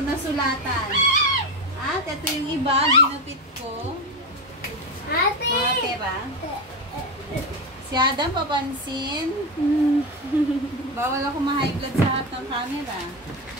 nasulatan. At ito yung iba, ginupit ko. Ate! Mga pera. Si Adam, papansin. Bawal ako ma-high blood sa harap ng camera.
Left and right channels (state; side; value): normal; both; correlation 0.15